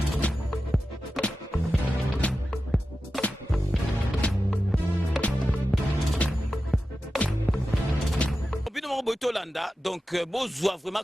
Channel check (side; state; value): both; normal; correlation 0.93